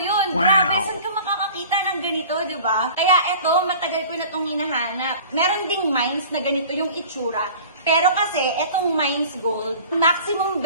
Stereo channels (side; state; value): both; inverted; correlation -0.43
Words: yun. Wow! Grabe, saan ka makakakita ng ganito, di ba? Kaya eto, matagal ko na itong hinahanap. Meron ding mines na ganito yung itsura. Pero kasi, etong Mines Gold, maximum